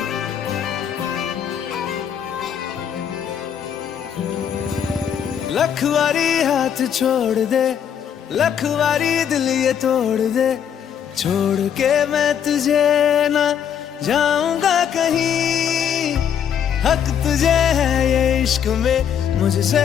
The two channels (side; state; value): right; quieter; 8.6 dB